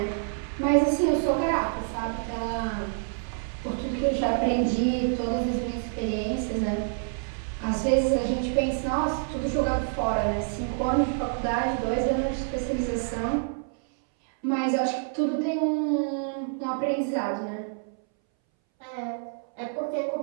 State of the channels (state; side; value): silent; left; 60 dB below the other